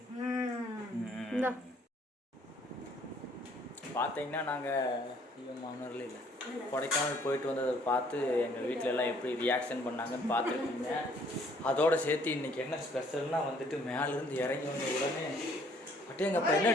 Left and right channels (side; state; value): both; normal; correlation 0.61